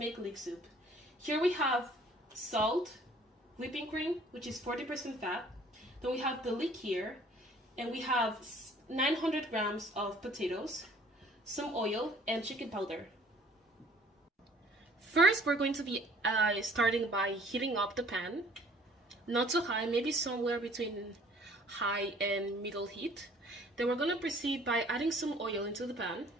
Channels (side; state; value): both; normal; correlation 0.55